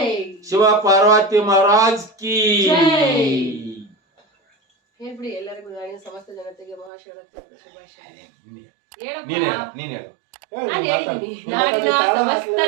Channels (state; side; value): drops out; left; at 6.9 s